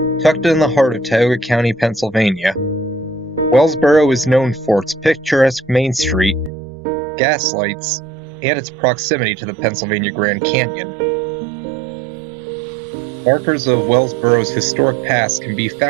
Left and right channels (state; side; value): drops out; left; at 6.5 s